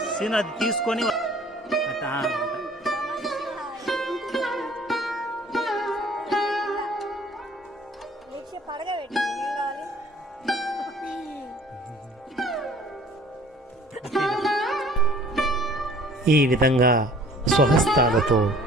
సీన్ అది తీసుకొని ఈ విధంగా స్వహస్తాలతో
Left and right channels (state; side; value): normal; both; correlation 0.52